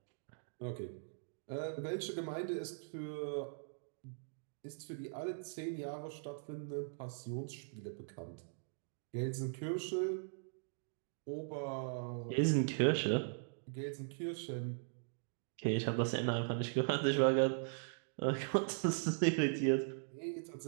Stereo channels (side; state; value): left; silent; digital silence